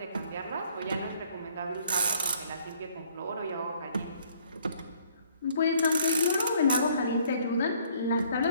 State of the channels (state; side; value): inverted; both; correlation -0.61